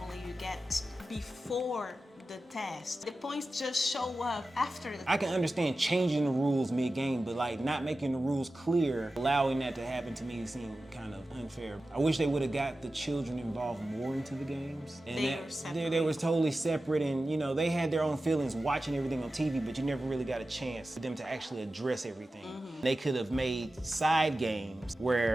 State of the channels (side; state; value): both; normal; correlation 0.94